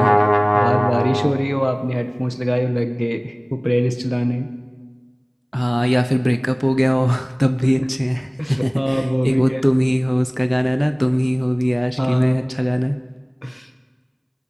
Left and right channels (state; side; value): identical; both; correlation 1.00